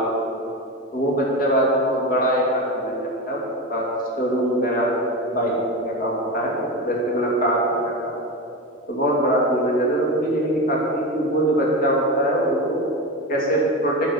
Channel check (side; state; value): both; normal; correlation 0.20